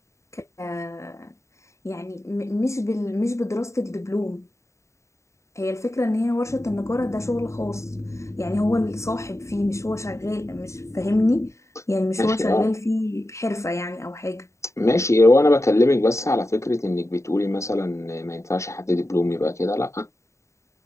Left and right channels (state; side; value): late; right; 0.14 ms